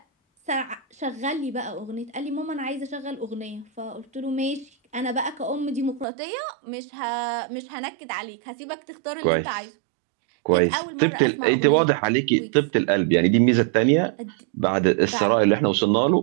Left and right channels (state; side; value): drops out; left; at 6.1 s